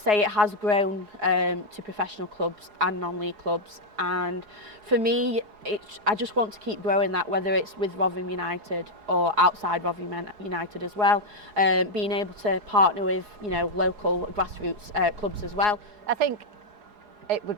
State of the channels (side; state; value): left; late; 4.8 ms